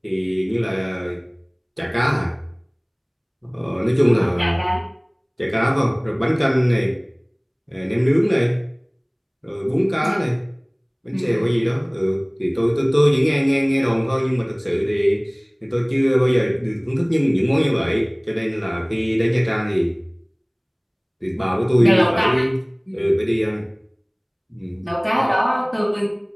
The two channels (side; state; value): both; identical; correlation 1.00